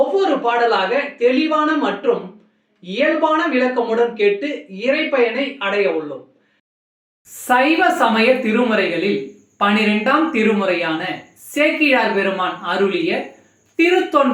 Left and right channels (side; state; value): both; identical; correlation 1.00